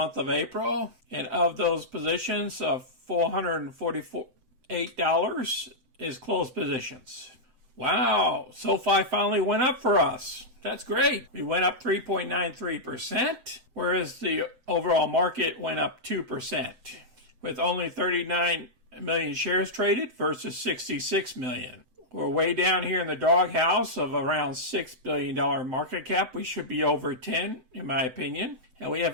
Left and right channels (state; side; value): late; left; 7.8 ms